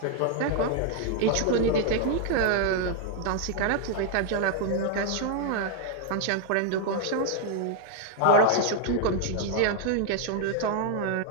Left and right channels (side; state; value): both; different; correlation 0.00